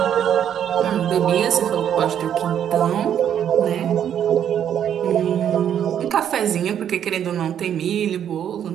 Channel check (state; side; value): quieter; left; 9.4 dB